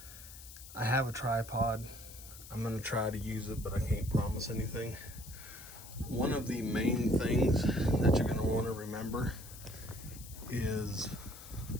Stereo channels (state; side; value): noise; left; hiss, 15 dB below the sound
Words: I have a tripod. I'm gonna try to use it, but I can't promise anything. One of the main things that you're gonna want to remember is